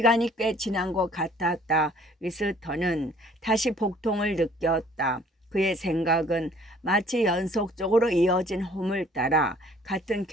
꽤 지난 것 같았다. 위스턴은 다시 복통을 느꼈다. 그의 생각은 마치 연속적으로 이어진 홈을 따라 같은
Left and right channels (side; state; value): both; normal; correlation 0.56